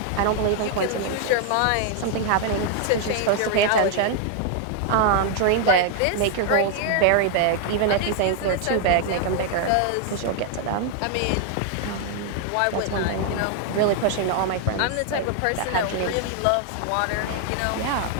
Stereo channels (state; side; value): different; both; correlation 0.00